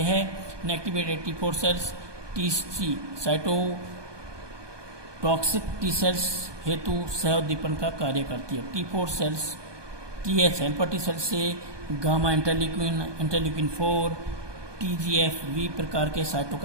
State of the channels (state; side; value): late; left; 1.2 ms